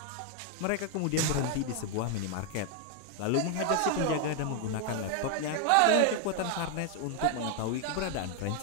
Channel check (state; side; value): different; both; correlation 0.00